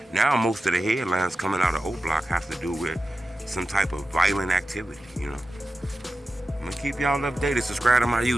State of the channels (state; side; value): normal; both; correlation 0.92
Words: Now, most of the headlines coming out of Oblock have to do with some type of violent activity, I'm gonna keep y'all updated. Subscribe to my